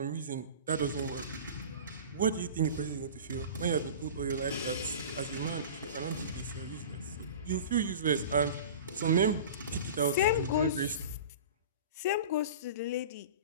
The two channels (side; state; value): both; inverted; correlation -0.36